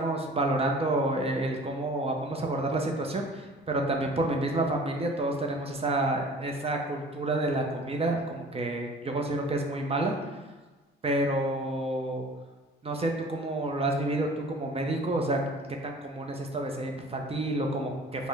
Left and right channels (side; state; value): both; normal; correlation 0.46